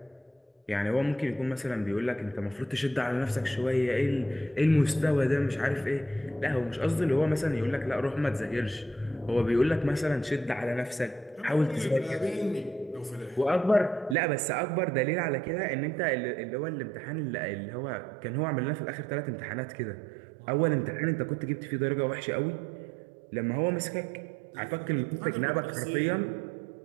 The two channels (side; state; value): left; drops out; at 14.2 s